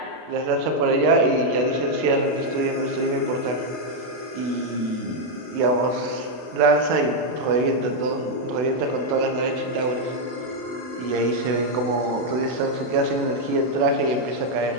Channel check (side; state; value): left; late; 32 ms